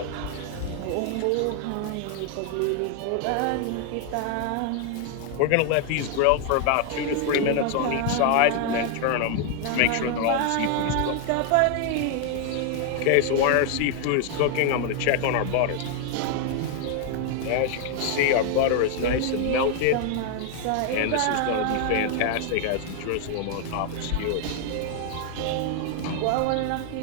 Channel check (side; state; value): both; different; correlation 0.00